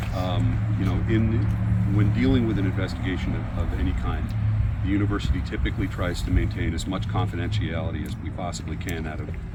When dealing with an investigation of any kind, the university typically tries to maintain as much confidentiality as we possibly can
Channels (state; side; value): identical; both; correlation 1.00